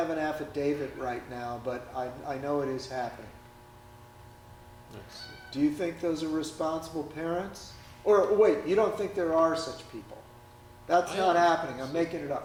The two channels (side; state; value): both; identical; correlation 1.00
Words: an affidavit right now, but I know it is happening. Do you think those are responsible parents? Or wait, you don't think there are such people? That's not happening. I'm making it